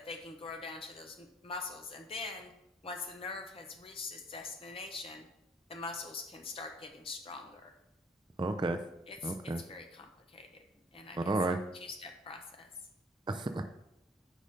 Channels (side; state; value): both; normal; correlation 0.59